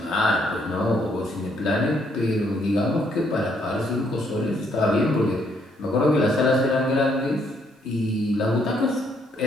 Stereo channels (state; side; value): normal; both; correlation 0.70